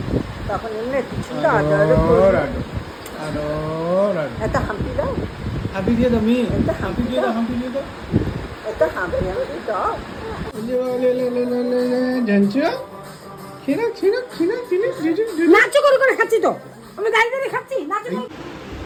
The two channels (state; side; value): identical; both; correlation 1.00